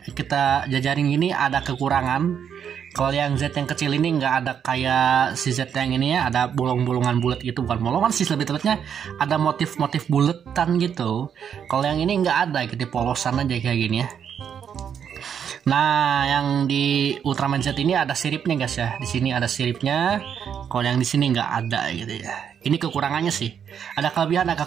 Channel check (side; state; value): left; quieter; 8.1 dB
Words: kita jajarin ini ada kekurangan. Kalau yang Z yang kecil ini nggak ada kayak si Z yang ini ya, ada bolong-bolongan bulat gitu, bukan bolongan sih lebih tepatnya, ada motif-motif buletan gitu. Kalau yang ini nggak ada gitu, polosan aja kayak gini ya. Nah, yang di Ultraman Z ini ada siripnya guys ya. Di sini ada siripnya. Kalau yang di sini nggak ada gitu ya. Ini kekurangannya sih. Ada kelebihan, ada